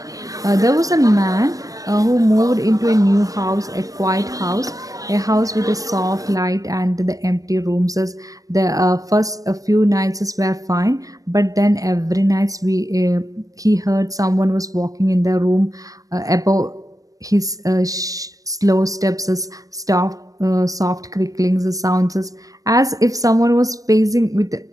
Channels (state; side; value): late; left; 0.17 ms